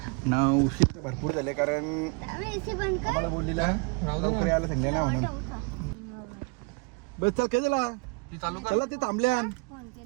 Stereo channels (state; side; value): quieter; left; 30.8 dB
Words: ना उशीर भरपूर झाले कारण आम्हाला बोललेला लवकर यायला सांगले ना म्हणून. बस चल काय झाला चला ते थांबल्या.